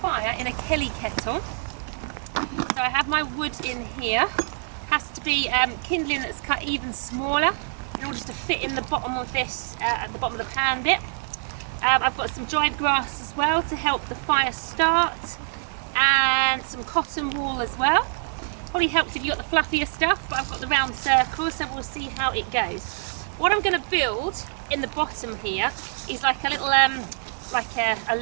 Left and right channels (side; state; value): left; silent; digital silence